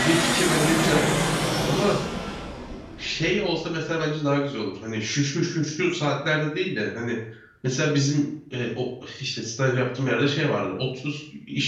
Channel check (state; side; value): identical; both; correlation 1.00